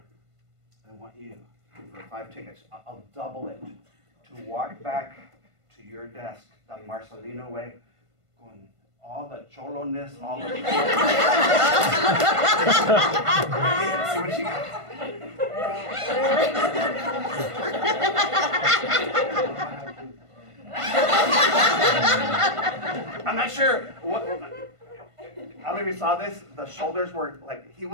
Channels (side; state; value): left; late; 1.5 ms